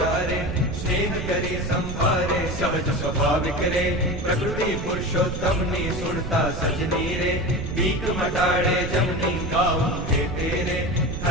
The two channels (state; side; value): noise; right; rumble, 5 dB below the sound